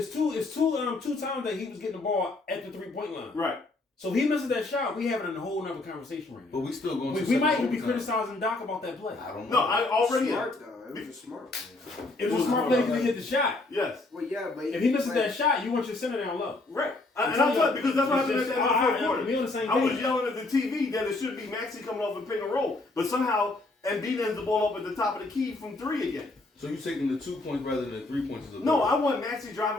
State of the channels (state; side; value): quieter; right; 3.1 dB